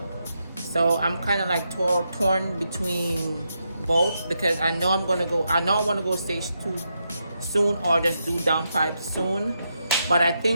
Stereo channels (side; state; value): both; inverted; correlation -0.83